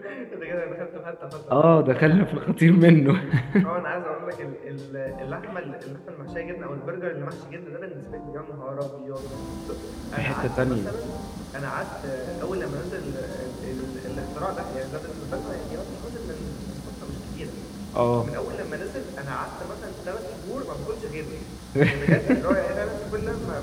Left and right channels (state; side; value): identical; both; correlation 1.00